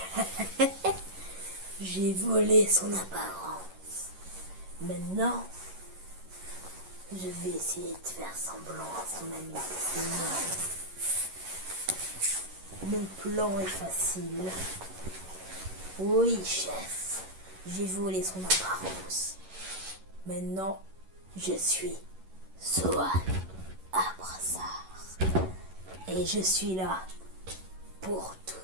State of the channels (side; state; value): left; late; 11 ms